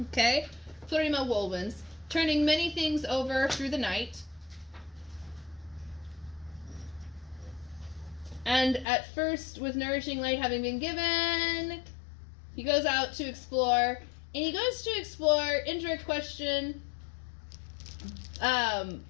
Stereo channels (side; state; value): right; drops out; at 8.8 s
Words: Okay? Plurima Wolwin's. Turning many things over through the night. And at first, with nourishing light having been given, he goes out to explore. And he goes to explore, indirect question,